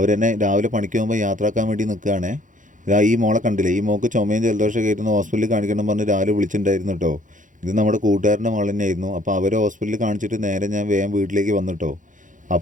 രാവിലെ പണിക്ക് പോകുമ്പോൾ യാത്രയാക്കാൻ വേണ്ടി നിൽക്കുകയാണേ. ഇതാ ഈ മോളെ കണ്ടില്ലേ, ഈ മോൾക്ക് ചുമയും ജലദോഷം കയറ്റുന്ന ഹോസ്പിറ്റലിൽ കാണിക്കണം പറഞ്ഞ് രാവിലെ വിളിച്ചിട്ടുണ്ടായിരുന്നു കേട്ടോ. ഇത് നമ്മുടെ കൂട്ടുകാരൻ്റെ മകൾ തന്നെയായിരുന്നു. അപ്പോൾ അവർ ഹോസ്പിറ്റലിൽ കാണിച്ചിട്ട് നേരെ ഞാൻ വേഗം വീട്ടിലേക്ക് വന്നിട്ടോ.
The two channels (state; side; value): late; left; 0.37 ms